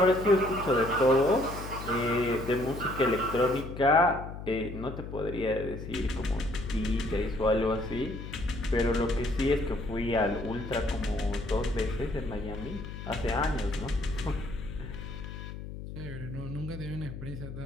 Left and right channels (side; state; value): left; noise; hum, 10 dB below the sound